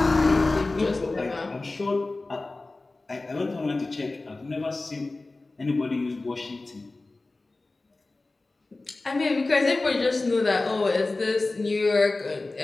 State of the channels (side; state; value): right; quieter; 3.2 dB